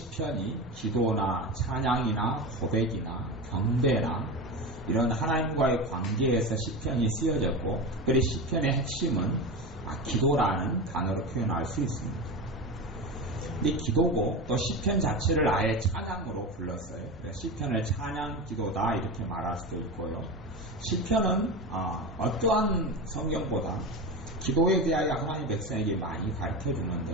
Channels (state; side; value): normal; both; correlation 0.23